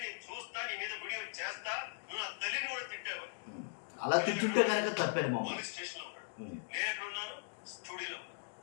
నేను చూస్తా, నీ మీద వీడియో చేస్తా, నువ్వు నా తల్లిని కూడా తిట్టావు. అలా తిట్టుంటే కనుక తప్పేది. పోలీస్ స్టేషన్ లో ఉన్నాడు, నేను ఎక్కడ ఉన్నాను? స్టూడియోలో ఉన్నాను.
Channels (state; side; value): silent; right; digital silence